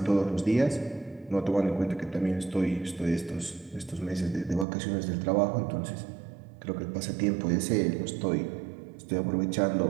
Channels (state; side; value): drops out; left; at 4.7 s